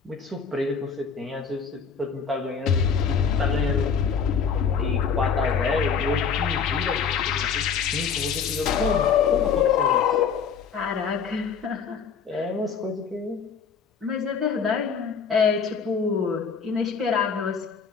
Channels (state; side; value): quieter; right; 6.3 dB